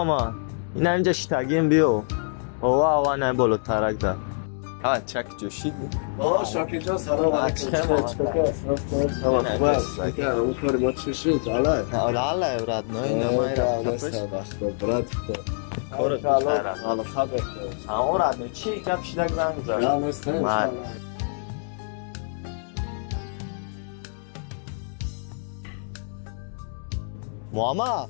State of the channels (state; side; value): silent; right; digital silence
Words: این اینجا شتگیم بیو او نه بلو ترک ده چک جوشی شاکی جان سلام علیکم اون کاری ما چی شد؟ الله برات نه نمای برات همون رد نه چی گپ شدک زنگ زد ماما